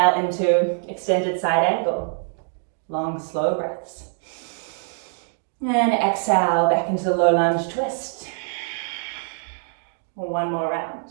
into extended side angle. Long, slow breaths. And exhale back into the low lunge twist. One more round.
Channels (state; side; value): silent; left; digital silence